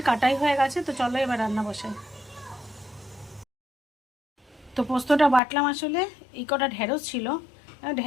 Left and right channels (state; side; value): drops out; right; at 5.4 s